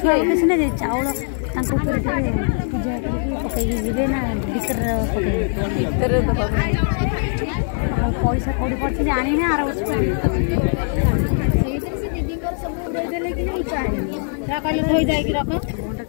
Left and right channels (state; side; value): silent; right; 65 dB below the other